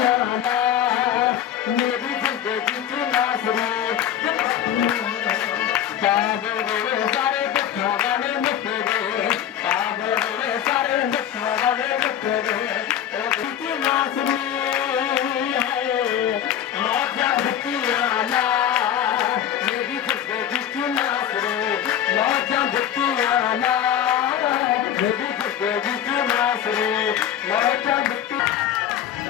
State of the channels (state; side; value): quieter; right; 10.2 dB